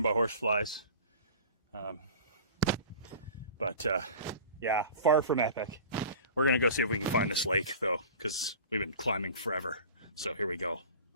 by horseflies. Yeah, far from epic. We're gonna go see if we can find this lake though, because we've been climbing forever. So here we go.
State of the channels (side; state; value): both; inverted; correlation -0.39